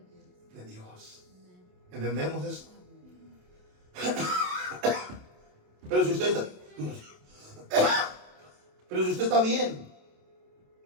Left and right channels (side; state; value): left; late; 27 ms